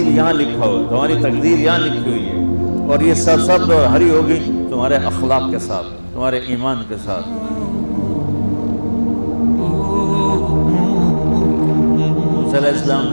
یہاں لکھا ہو، تمہاری تقدیر یہاں لکھی ہوئی ہے، اور یہ سرسبز اور ہری ہوگی تمہارے اخلاق کے ساتھ، تمہارے ایمان کے ساتھ۔ موسیٰ علیہ السلام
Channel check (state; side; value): inverted; both; correlation -1.00